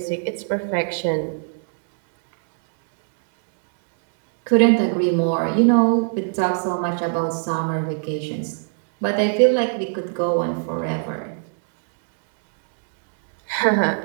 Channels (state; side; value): silent; left; digital silence